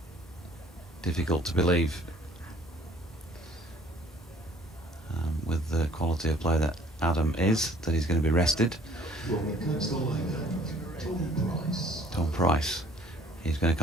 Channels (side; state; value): both; normal; correlation 0.56